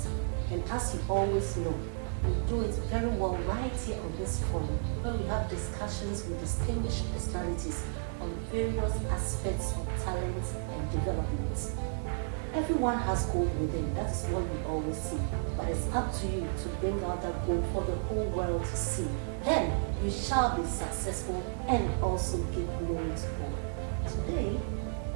And as you always know, we do it very well right here on this forum, where we have discussions with distinguished personalities on various aspects of talent and development. Everyone has gold within, that's what we always see. But it's up to you to bring out that gold for the whole world to see. Then you shall be successful and also give glory to God. Today,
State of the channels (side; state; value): left; silent; digital silence